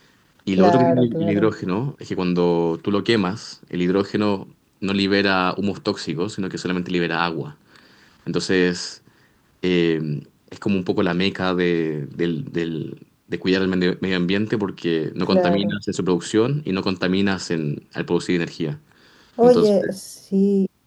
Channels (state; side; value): identical; both; correlation 1.00